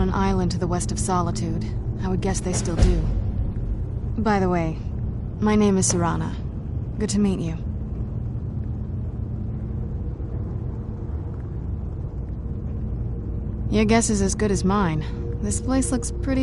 an island to the west of Solitude. I would guess they still do. By the way, my name is Serana. Good to meet you. Your guess is as good as mine. This place looks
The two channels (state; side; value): identical; both; correlation 1.00